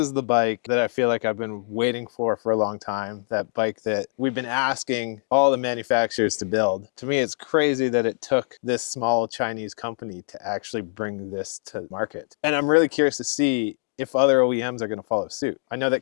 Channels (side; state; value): right; silent; digital silence